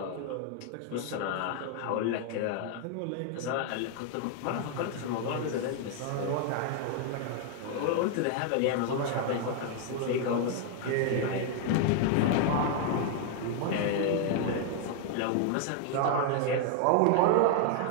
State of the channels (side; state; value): both; different; correlation 0.00